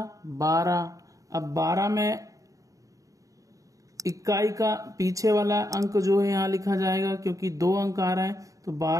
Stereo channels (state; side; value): late; left; 0.16 ms